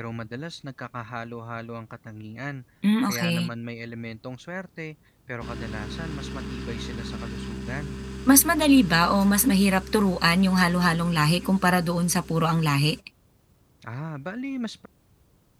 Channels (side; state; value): both; identical; correlation 1.00